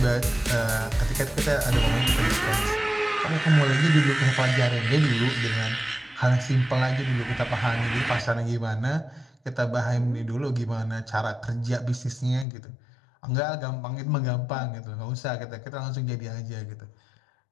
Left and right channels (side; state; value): right; drops out; at 12.5 s